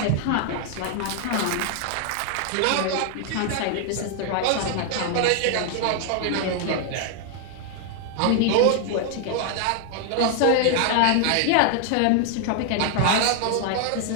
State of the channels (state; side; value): different; both; correlation 0.00